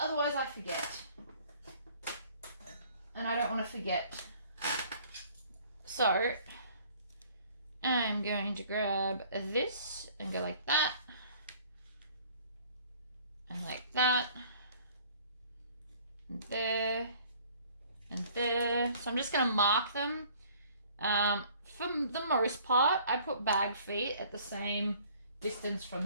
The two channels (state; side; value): inverted; both; correlation -0.55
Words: I forget. And I don't want to forget. So I'm going to grab this and go like that. And like that. And there. And there. So I'm just going to mark them. For the most part, I put bag feet at the same distance from